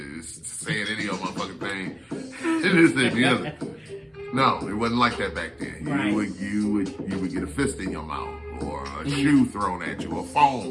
It's saying any old motherfucking thing. This, that, and the other. No, it wasn't like that back then. Right. You would get a fist in your mouth, or a shoe thrown at you, or a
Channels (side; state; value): both; identical; correlation 1.00